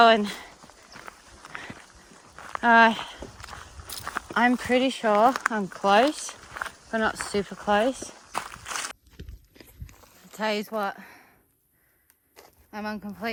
I'm pretty sure I'm close, but not super close. I'll tell you what, I'm on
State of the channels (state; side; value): identical; both; correlation 1.00